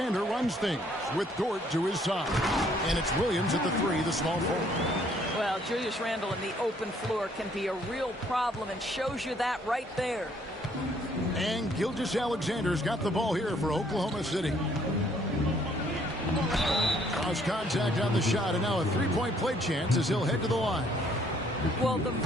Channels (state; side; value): normal; both; correlation 0.64